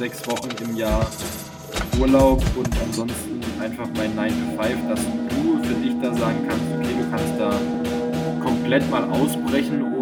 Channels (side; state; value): both; identical; correlation 1.00